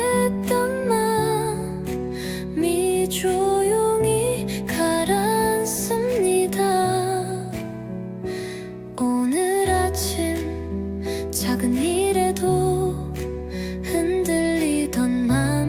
마음이 조용히 가라앉습니다. 오늘 아침 작은 일에도 흔들리던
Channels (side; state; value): both; identical; correlation 1.00